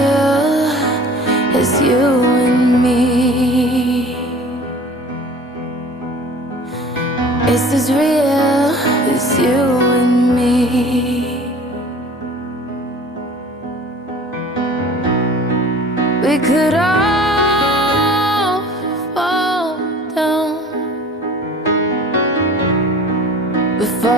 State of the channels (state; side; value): normal; both; correlation 0.45